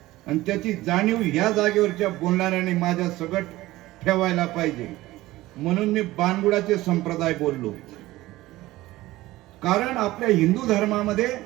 आणि त्याची जाणीव ह्या जागेवरच्या बोलणाऱ्याने माझ्या सगट ठेवायला पाहिजे. म्हणून मी बाणगुळाचे संप्रदाय बोललो. कारण आपल्या हिंदू धर्मामध्ये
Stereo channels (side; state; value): left; quieter; 17.5 dB